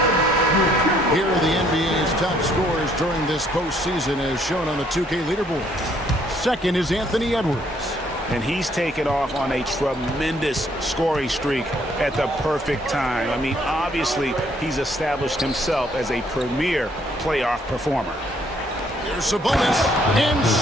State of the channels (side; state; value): both; normal; correlation 0.66